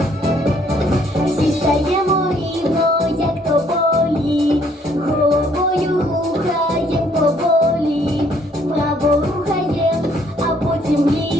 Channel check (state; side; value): normal; both; correlation 0.65